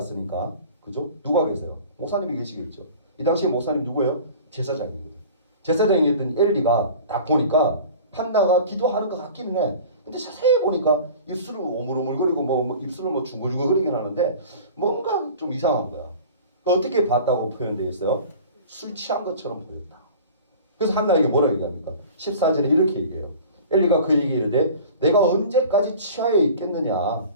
그죠? 누가 계세요? 목사님이 계시겠죠. 이 당시에 목사님 누구예요? 제사장이거든. 제사장이었던 엘리가 딱 보니까 한나가 기도하는 것 같기는 해. 근데 자세히 보니까 입술을 오물오물거리고 뭐 입술을 뭐 중글중글거리긴 하는데 뭔가 좀 이상한 거야. 어떻게 봤다고 표현되어 있어요? 술 취한 것처럼 보였다. 그래서 한나에게 뭐라고 얘기합니까? 14절에 이렇게 얘기해요. 엘리가 그 얘기를 이르되 내가 언제까지 취하여 있겠느냐.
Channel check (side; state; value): both; inverted; correlation -0.41